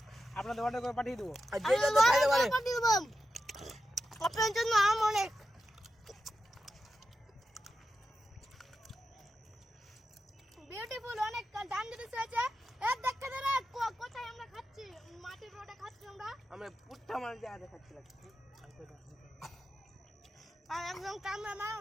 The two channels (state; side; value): normal; both; correlation 0.90